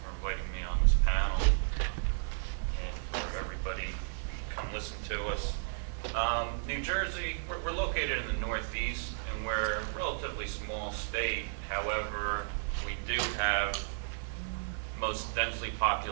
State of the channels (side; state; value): left; silent; digital silence